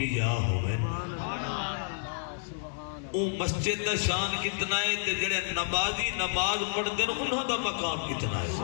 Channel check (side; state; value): right; silent; 58 dB below the other